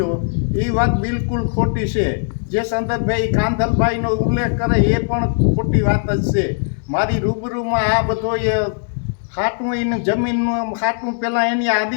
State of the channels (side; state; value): right; silent; digital silence